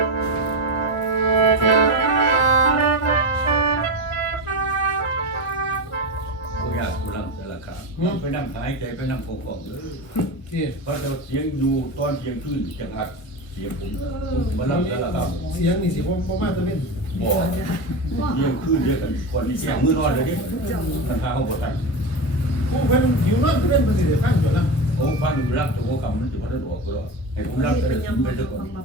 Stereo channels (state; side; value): late; right; 1.6 ms